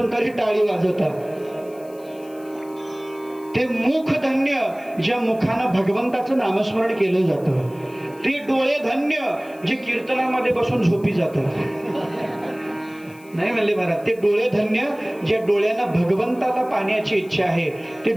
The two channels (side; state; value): left; noise; hiss, 26 dB below the sound